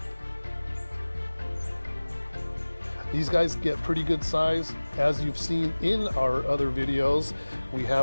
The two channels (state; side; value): inverted; both; correlation -1.00